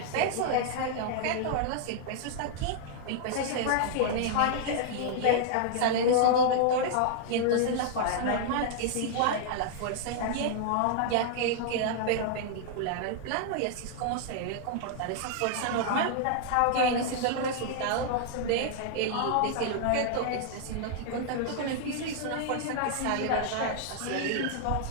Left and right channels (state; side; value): different; both; correlation -0.01